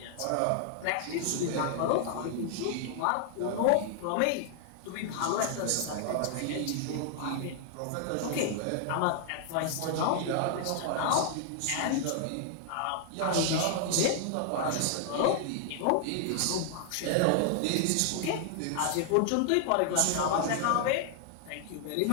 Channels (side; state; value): both; different; correlation 0.00